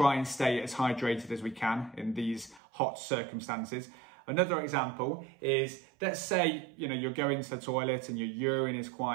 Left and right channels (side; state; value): left; drops out; at 2.6 s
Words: and stay as hydrated as we can in these hot circumstances. Another example is, let's say, you're going to the toilet and your urine is